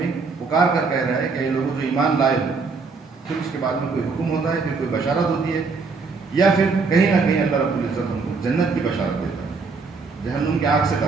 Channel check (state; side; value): quieter; left; 4.5 dB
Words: پکار کر کہہ رہا ہے کہ یہ لوگوں جو ایمان لائے ہو. پھر اس کے بعد میں کوئی حکم ہوتا ہے, پھر کوئی بشارت ہوتی ہے, یا پھر کہیں نہ کہیں اللہ رب العزت ہم کو جنت کی بشارت دیتا ہے, جہنم کی آگ سے